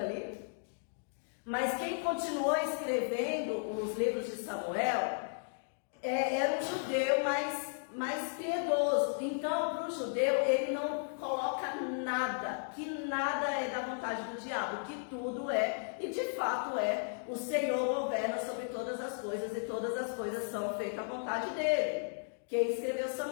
Mas quem continuou escrevendo os livros de Samuel era um judeu mais piedoso. Então, para o judeu, ele não coloca nada, que nada é da vontade do diabo, que tudo é, e de fato é, o Senhor governa sobre todas as coisas, e todas as coisas são feitas à vontade dele. Quem escreveu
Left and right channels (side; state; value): right; silent; digital silence